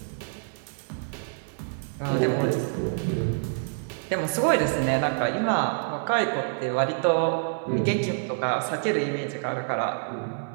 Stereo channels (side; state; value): left; silent; 58 dB below the other